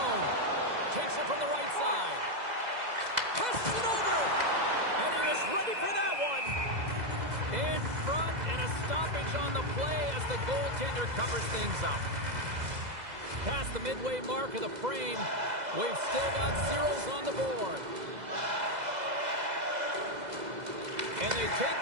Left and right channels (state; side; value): late; left; 2.0 ms